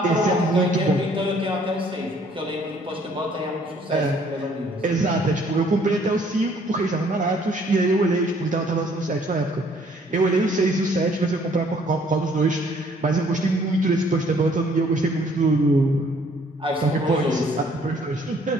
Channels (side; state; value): both; normal; correlation 0.61